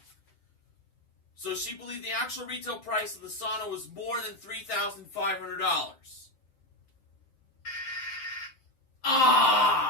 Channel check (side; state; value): right; late; 7.8 ms